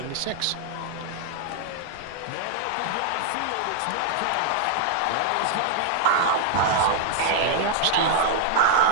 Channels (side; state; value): both; different; correlation -0.01